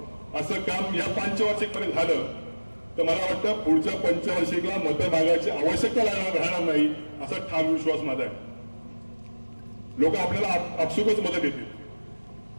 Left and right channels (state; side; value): inverted; both; correlation -1.00